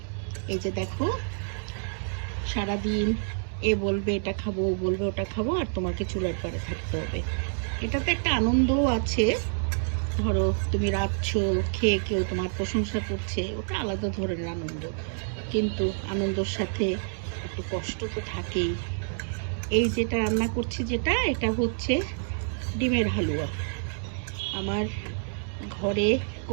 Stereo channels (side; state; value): left; silent; digital silence